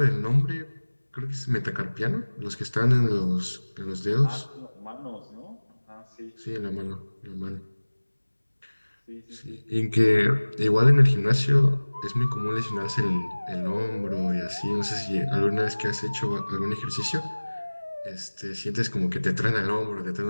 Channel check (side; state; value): both; inverted; correlation -1.00